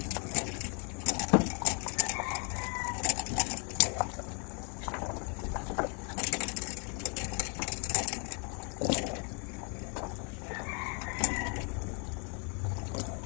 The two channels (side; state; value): right; quieter; 36.2 dB